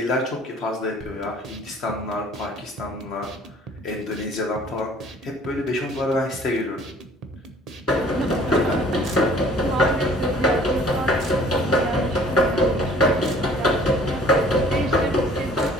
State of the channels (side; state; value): both; normal; correlation 0.53